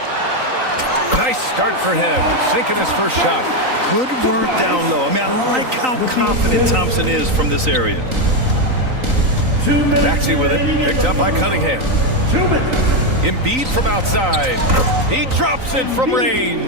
Nice start for him, sinking his first shot. Good work down low. I mean, I like how confident Thompson is from this area. Maxey with it, picked up by Cunningham. Embiid from outside. He drops it from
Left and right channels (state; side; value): late; left; 3.9 ms